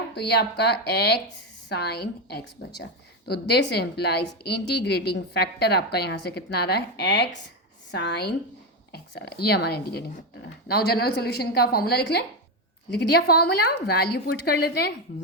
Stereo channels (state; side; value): normal; both; correlation 0.10